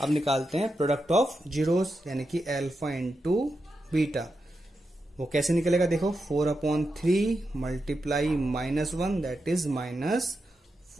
अब निकालते हैं प्रोडक्ट ऑफ जीरोस यानी कि अल्फा इंटू बीटा। वो कैसे निकलेगा, देखो 4/3 मल्टीप्लाई -1 दैट इज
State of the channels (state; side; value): normal; both; correlation 0.87